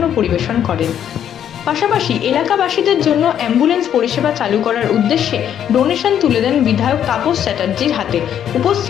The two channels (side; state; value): right; quieter; 9.7 dB